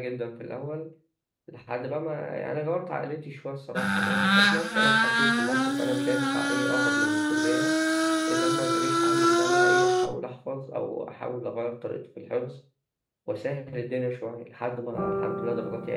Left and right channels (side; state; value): both; identical; correlation 1.00